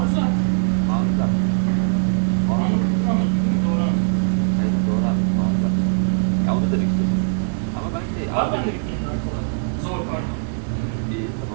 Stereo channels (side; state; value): left; silent; 63 dB below the other